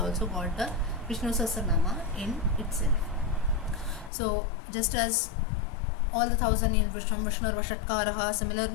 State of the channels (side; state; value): right; drops out; at 4.1 s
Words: got the Vishnu Sahasranama in itself. So just as all the 1,000 names, Vishnu Vashatkaraha,